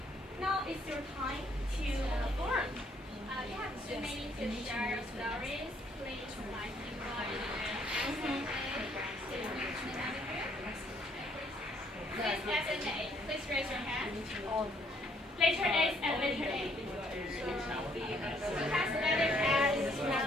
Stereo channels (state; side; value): normal; both; correlation 0.67